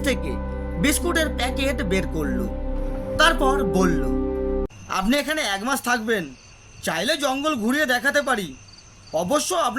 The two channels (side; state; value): both; identical; correlation 1.00